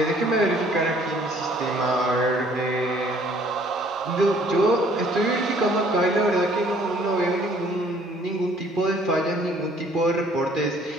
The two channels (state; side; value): normal; both; correlation 0.59